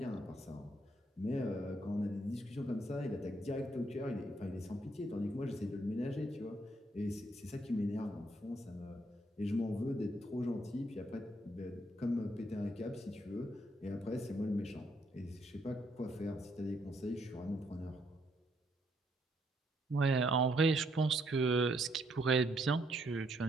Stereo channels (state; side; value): normal; both; correlation 0.72